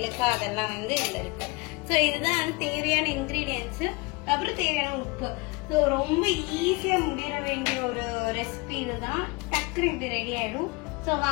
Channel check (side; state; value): right; quieter; 26.6 dB